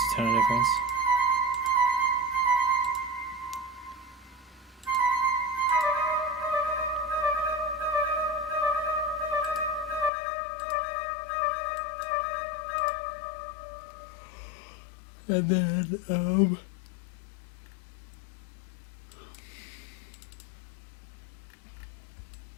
a ton of difference. And then,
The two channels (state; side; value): drops out; right; at 10.1 s